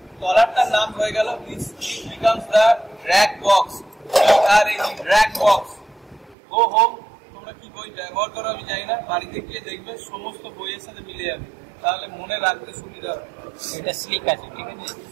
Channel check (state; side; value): drops out; left; at 6.4 s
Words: তলারটার নাম হয়ে গেল becomes the drag box. Drag box. Go home, তোমরা কি বই ব্যবহার করো আমি জানি না, বাড়িতে গিয়ে দেখবে সমস্ত বইয়ের সাথে মিলে যাবে, তাহলে মনে রাখতে সুবিধা হবে। এটা স্লিক আছে, ঠিক আছে।